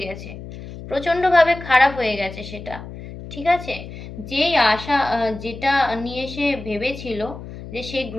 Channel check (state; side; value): noise; left; hum, 12 dB below the sound